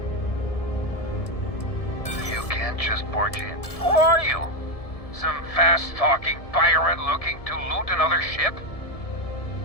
You can't just barge in. Who are you? Some fast-talking pirate looking to loot another ship?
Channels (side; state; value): right; late; 1.7 ms